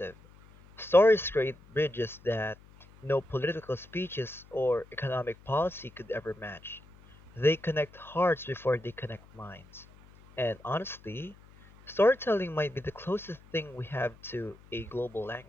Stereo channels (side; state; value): left; noise; hum, 24 dB below the sound